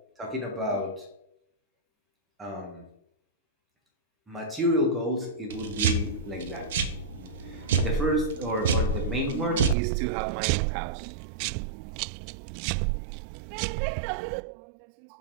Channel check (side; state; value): left; drops out; at 9.8 s